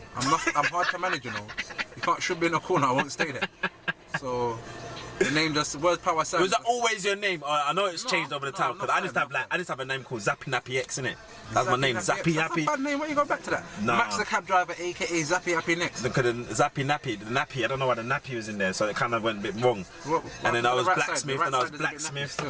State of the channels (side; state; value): both; identical; correlation 1.00